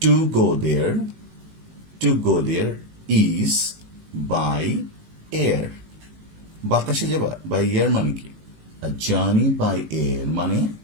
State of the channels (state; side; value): late; left; 19 ms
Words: to go there, to go there is by air. বাতাসে যাবা, বাই এয়ার মানে কি? A journey by air মানে